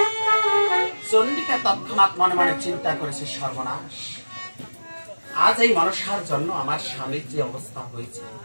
চন্ডিকা তৎক্ষণাৎ মনে মনে চিন্তা করেছে, সর্বনাশ, আজ এই মনসার জন্য আমার স্বামীর যে অবস্থা হয়েছে,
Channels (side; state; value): both; inverted; correlation -1.00